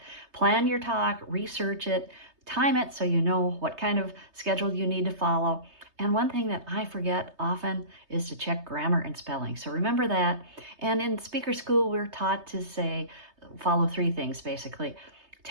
Plan your talk, research it, time it so you know what kind of schedule you need to follow. And one thing that I forget often is to check grammar and spelling. So remember that. And in speaker school, we're taught to say, follow 3 things basically.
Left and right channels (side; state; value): left; late; 3.2 ms